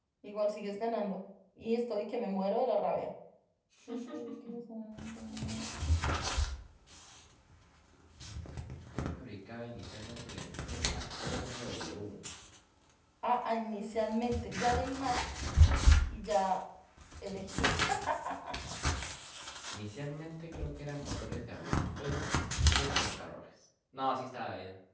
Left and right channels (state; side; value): identical; both; correlation 1.00